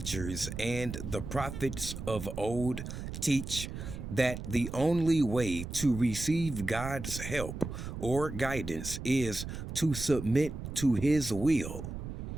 and the prophets of old teach that the only way to receive God's help or guidance is to submit to His will?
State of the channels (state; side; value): noise; right; rumble, 8 dB below the sound